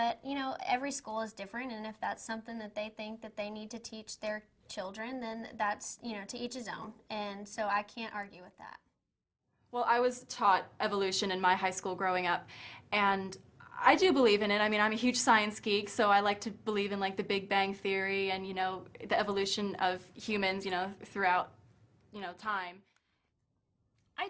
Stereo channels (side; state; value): both; identical; correlation 1.00